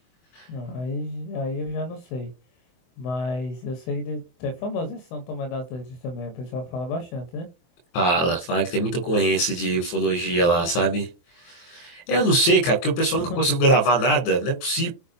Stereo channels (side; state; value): right; late; 24 ms